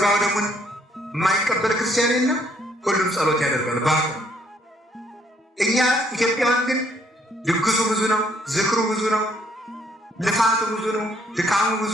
ደሙን የማይቀበል ክርስቲያን የለም። ሁሉም ጸሎት ያደርጋል ባቁ። እኛ ኢትዮጵያውያን ግን ድግሱ ብዙ ነው፣ ዝክሩ ብዙ ነው፣ ልፋቱ ብዙ ነው፣ ድካሙ ብዙ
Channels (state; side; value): normal; both; correlation 0.67